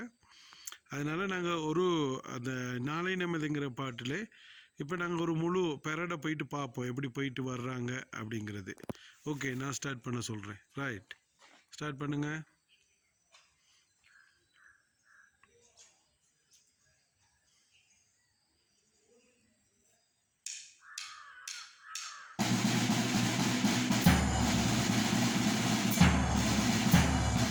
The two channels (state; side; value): identical; both; correlation 1.00